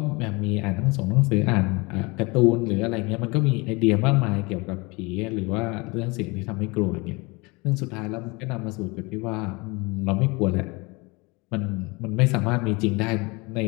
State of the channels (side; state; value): right; quieter; 26.4 dB